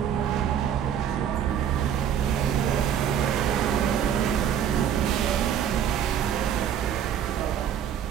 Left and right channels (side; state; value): left; quieter; 9.0 dB